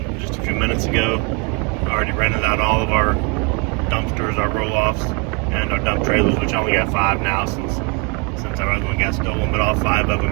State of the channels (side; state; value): left; quieter; 31.4 dB